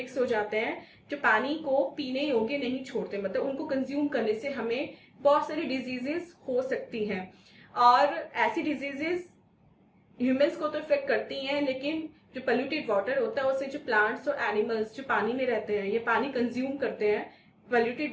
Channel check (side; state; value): both; identical; correlation 1.00